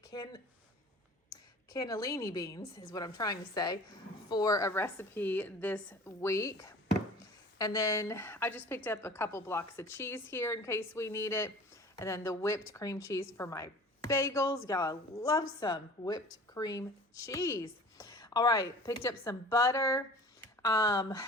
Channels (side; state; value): both; normal; correlation 0.44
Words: beans is what I'm trying to say for a recipe this week. And then I just picked up a couple blocks of cheese here in case we need it. And then the whipped cream cheese for my bagels. Y'all, I love some whipped cream cheese. All right, picked up some butter.